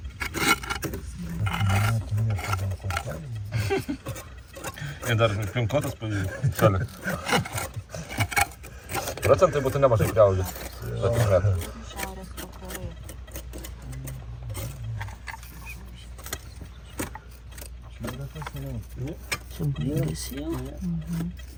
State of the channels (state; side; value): identical; both; correlation 1.00